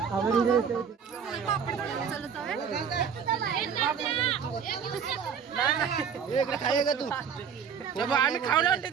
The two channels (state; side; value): quieter; left; 7.0 dB